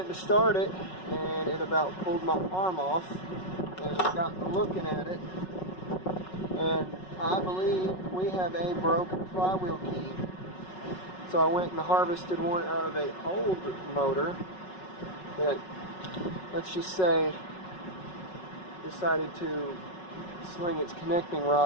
to start it, and it about pulled my arm off, and I got looking at it, and I believe we have a broken flywheel key. So I went and harvested one out of an old motor that, let's just say, decided to sling its connecting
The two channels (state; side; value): late; right; 5.4 ms